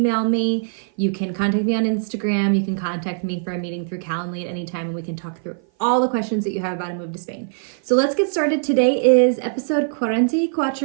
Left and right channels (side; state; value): left; silent; 56 dB below the other